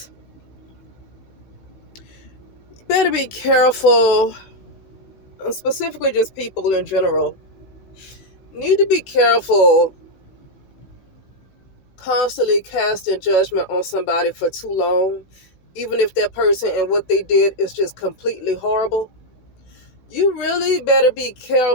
You better be careful, specifically just people in general. Need to be careful constantly casting judgment on somebody for too long, even if that person and what they did is just completely horrible. You really better be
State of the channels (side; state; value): right; late; 16 ms